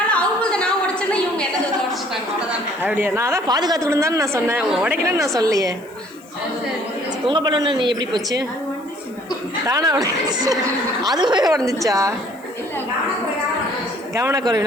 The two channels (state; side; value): noise; left; hiss, 27 dB below the sound